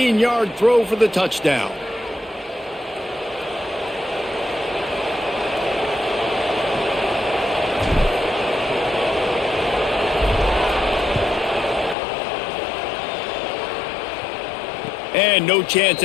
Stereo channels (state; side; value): drops out; right; at 12.0 s